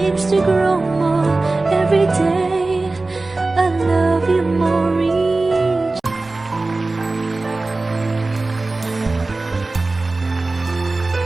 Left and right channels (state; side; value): quieter; left; 3.3 dB